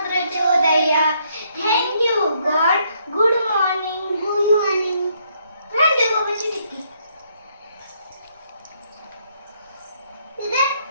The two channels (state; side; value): inverted; both; correlation -0.71